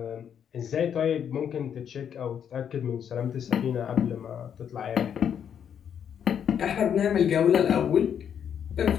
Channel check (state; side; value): quieter; right; 8.5 dB